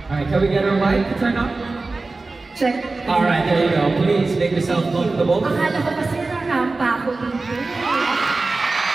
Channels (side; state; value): left; quieter; 3.5 dB